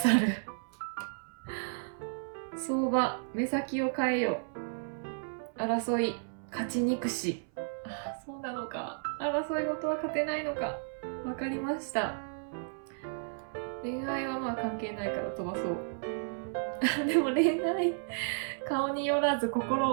る。相場、目先を変えよ。争い、勝ちにくし。そうなのか。争い事は勝てないのか。わかりました。恋愛はまあ関係ないから飛ばそう。でも恋愛、顔によらず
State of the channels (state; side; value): silent; left; 56 dB below the other